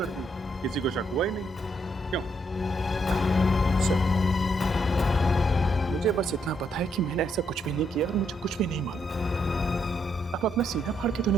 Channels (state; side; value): normal; both; correlation 0.75